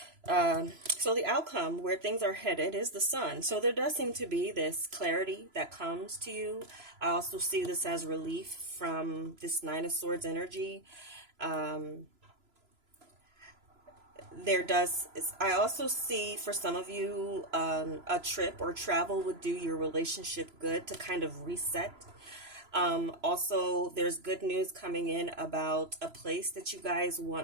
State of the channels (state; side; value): late; left; 3.0 ms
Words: So the outcome, where things are headed, is the Sun. So there does seem to be this clarity that comes to you. I also see this as relief from this Nine of Swords energy. I also see for some of you, a trip or travel would do your relationship good to kind of reset. Also, there's good news coming in about a place that you guys